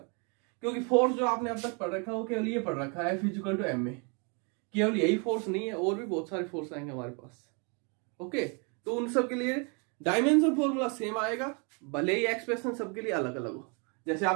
क्योंकि फोर्स जो आपने अब तक पढ़ रखा है वो केवल ये पढ़ रखा है F इक्वल टू m में। केवल यही फोर्स नहीं है, और भी बहुत सारे फोर्स आएंगे हमारे पास। ओके, तो उन सब के लिए डायमेंशन फॉर्मूला सेम आएगा, भले ही एक्सप्रेशन सबके लिए अलग अलग हो। जैसे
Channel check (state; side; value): quieter; left; 34.7 dB